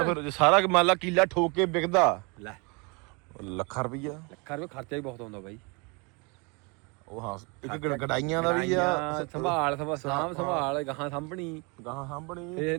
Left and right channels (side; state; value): left; quieter; 30.4 dB